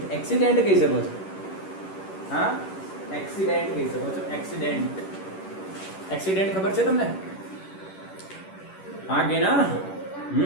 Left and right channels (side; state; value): right; late; 11 ms